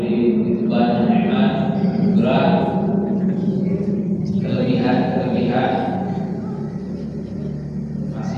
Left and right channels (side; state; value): both; identical; correlation 1.00